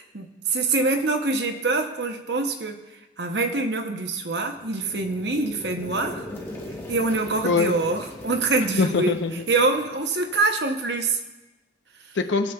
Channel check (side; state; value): both; normal; correlation 0.20